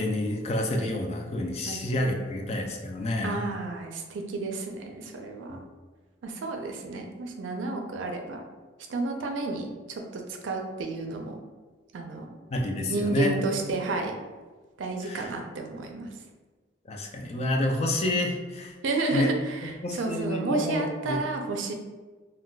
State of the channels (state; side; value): normal; both; correlation 0.44